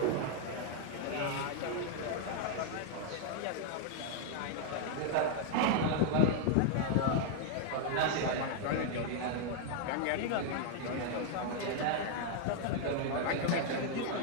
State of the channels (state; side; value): different; both; correlation 0.00